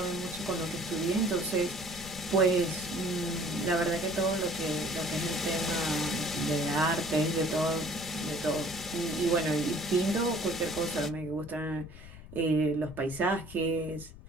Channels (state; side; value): noise; left; rumble, 16 dB below the sound